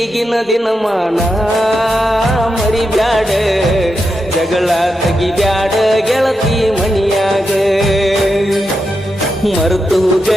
ದಿನಮಾನ ಮರಿಬ್ಯಾಡ ಜಗಳ ತೆಗಿಬ್ಯಾಡ ಗೆಳತಿ ಮನಿಯಾಗ ಮರ್ತೋಗ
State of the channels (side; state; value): both; normal; correlation 0.86